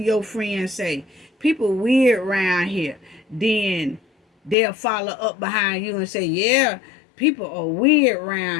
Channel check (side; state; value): right; drops out; at 4.5 s